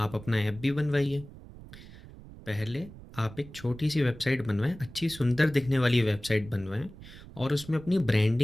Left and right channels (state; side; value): noise; right; rumble, 17 dB below the sound